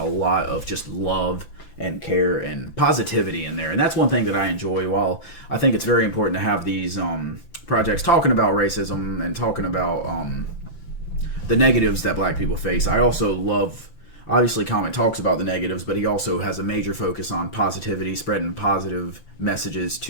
lot of just love and care and positivity in there, and that's one thing that I enjoy. While I think it's very important to have these projects talking about racism and talking about the negatives that Black people face, I also love. Obviously, Common talks about the negatives, but he also has a major focus on positivity, spreading positive messages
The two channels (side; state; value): right; late; 5.9 ms